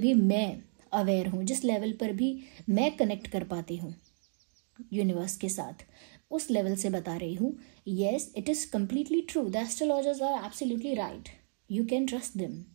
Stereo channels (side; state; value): left; silent; 56 dB below the other